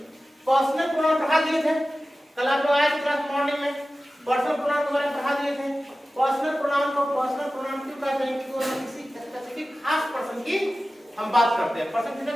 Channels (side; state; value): both; normal; correlation 0.95